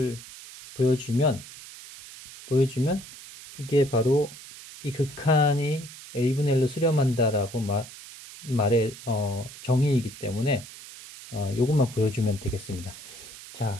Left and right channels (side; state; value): right; noise; hiss, 16 dB below the sound